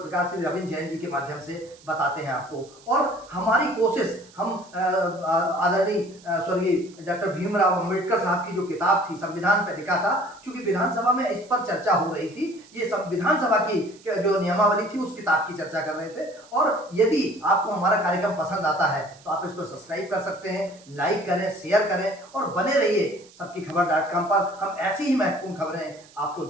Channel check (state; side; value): noise; right; hiss, 25 dB below the sound